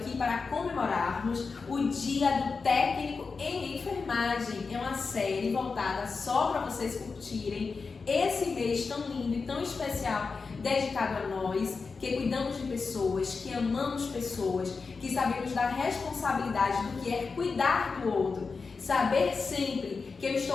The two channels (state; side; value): quieter; right; 4.7 dB